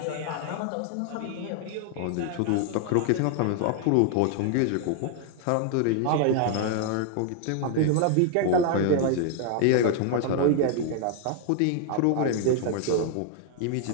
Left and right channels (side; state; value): both; different; correlation 0.00